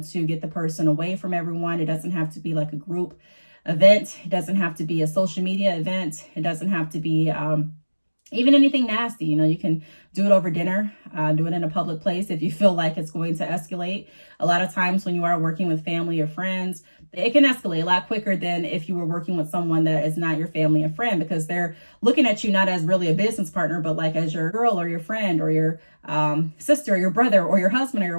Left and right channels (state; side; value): inverted; both; correlation -1.00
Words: to get the person away from everyone. It doesn't have to be like a group event. It doesn't have to be a social media event. It doesn't have to be even anything nasty. You know, you can do it over dinner, do it in a public place if you feel like it's going to escalate. A lot of times when you are working with family or friends, it can escalate a lot quicker than if you were working with someone that is not your family and friend, because they're looking at you not as really a business partner, but like as your girl or your friend or your sister or your brother or your husband or your